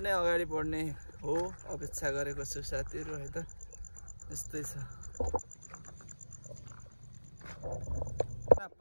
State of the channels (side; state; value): both; inverted; correlation -1.00